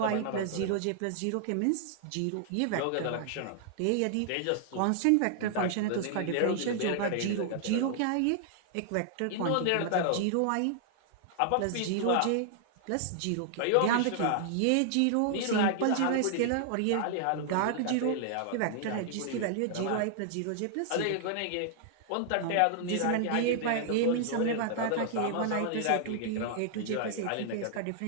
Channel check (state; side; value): different; both; correlation -0.01